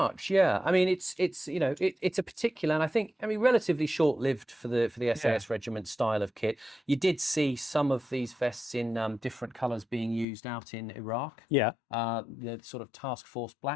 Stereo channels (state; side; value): drops out; right; at 10.2 s